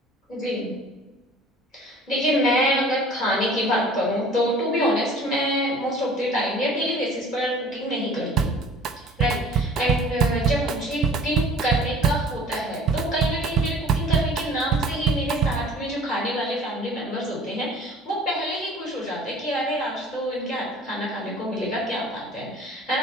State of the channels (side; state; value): both; normal; correlation 0.47